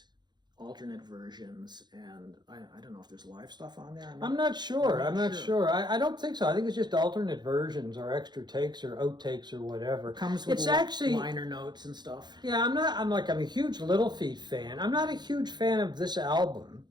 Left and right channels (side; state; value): left; late; 0.21 ms